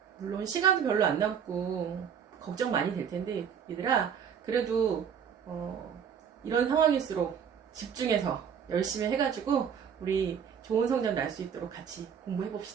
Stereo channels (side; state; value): left; quieter; 7.7 dB